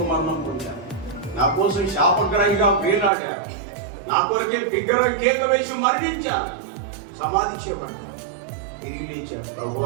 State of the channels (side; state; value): left; drops out; at 3.1 s